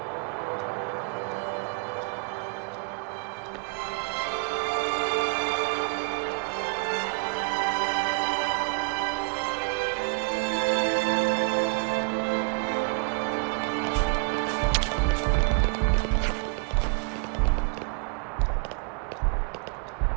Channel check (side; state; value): left; quieter; 36.0 dB